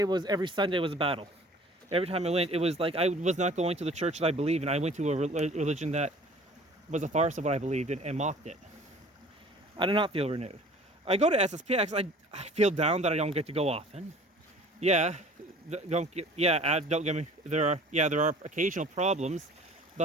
Sunday was a battle. Every time I went, it was like I was not going to the church that I believed in. I went to a religion that was a farce of what I believed in and mocked it. I did not feel renewed. I go to SSPX, I feel down that I don't get to go often. Yeah, don't get, yeah, don't get me, there are occasional problems,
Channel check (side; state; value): both; normal; correlation 0.48